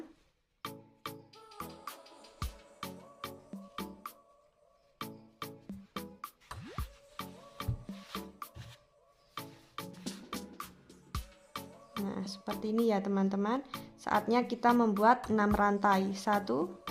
Nah seperti ini ya teman-teman. Saatnya kita membuat 6 rantai. 1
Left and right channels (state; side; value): identical; both; correlation 1.00